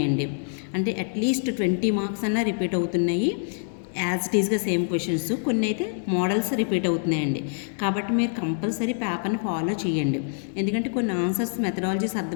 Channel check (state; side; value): silent; right; digital silence